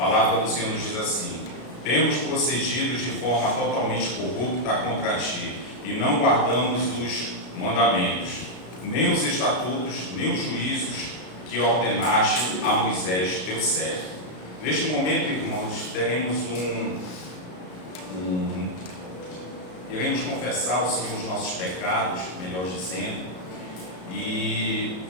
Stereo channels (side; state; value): right; late; 33 ms